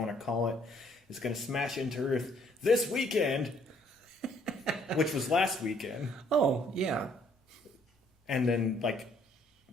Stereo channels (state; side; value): normal; both; correlation 0.64